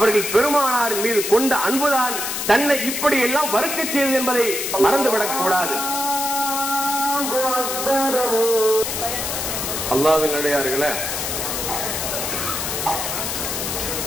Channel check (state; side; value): noise; left; hiss, 3 dB below the sound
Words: பெருமானார் மீது கொண்ட அன்புதான் தன்னை இப்படி எல்லாம் வறுக்க செய்தது என்பதை மறந்துவிடக் கூடாது. அல்லாஹ்வின் அடியார்களே,